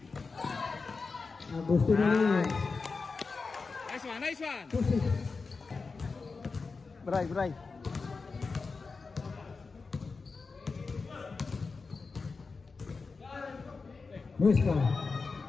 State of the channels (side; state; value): right; quieter; 4.4 dB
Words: Gusto na rin. Nice one, nice one. Bray, bray. Musta.